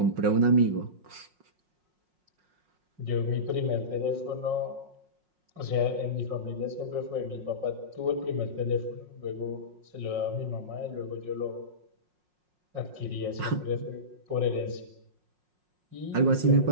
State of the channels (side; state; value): left; late; 5.5 ms